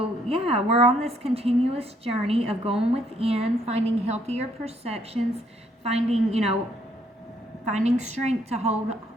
yeah, we're on this continuous journey of going within, finding healthier perceptions, finding strength to hold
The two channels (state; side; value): normal; both; correlation 0.69